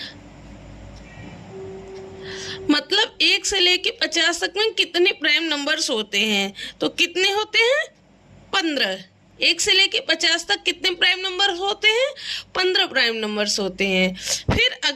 मतलब 1 से लेके 50 तक में कितने प्राइम नंबर्स होते हैं? तो कितने होते हैं? 15। 1 से लेके 50 तक कितने प्राइम नंबर होते हैं? 15 प्राइम नंबर्स होते हैं। फिर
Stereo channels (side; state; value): both; identical; correlation 1.00